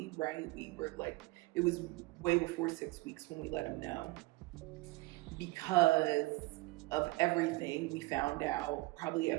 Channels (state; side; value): quieter; left; 21.9 dB